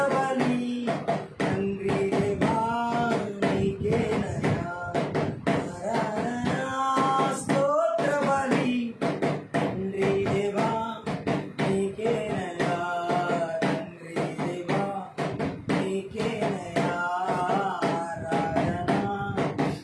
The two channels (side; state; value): both; identical; correlation 1.00